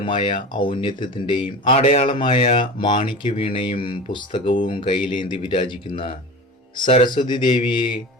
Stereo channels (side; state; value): both; normal; correlation 0.32